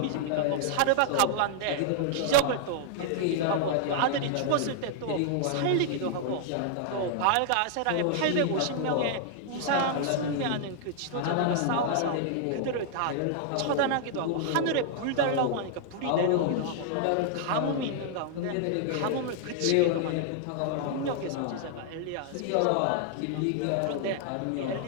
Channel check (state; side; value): different; both; correlation -0.01